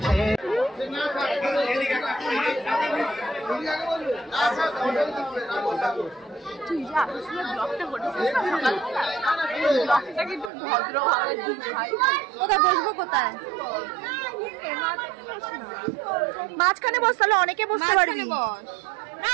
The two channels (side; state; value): left; drops out; at 10.5 s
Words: তুই যে আকর্ষণের ব্লগটা করেছিস না ব্লগটা কিন্তু ভদ্রভাবে দিস ভাই। কোথায় বসবো কোথায়? মাঝখানে বস, তাহলে অনেকে বসতে পারবি।